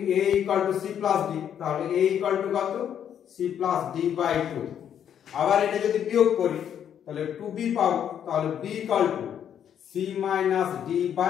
equal to c plus d, তাহলে a ইকুয়াল টু কত c প্লাস d বাই 2। আবার এটা যদি বিয়োগ করি তাহলে 2b পাবো, তাহলে b equal to c minus d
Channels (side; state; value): right; quieter; 9.2 dB